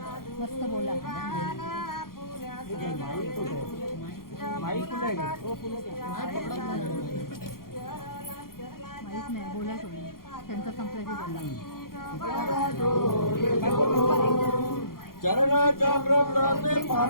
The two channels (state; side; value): late; right; 0.92 ms